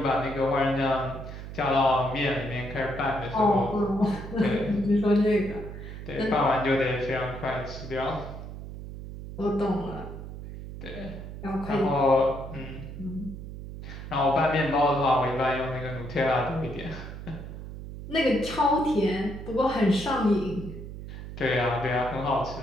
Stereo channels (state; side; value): noise; right; hum, 10 dB below the sound